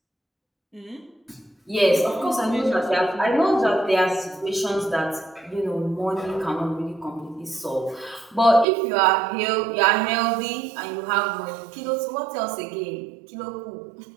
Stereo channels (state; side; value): drops out; left; at 8.7 s